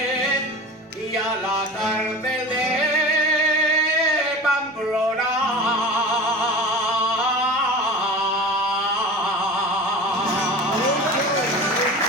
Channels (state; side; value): normal; both; correlation 0.34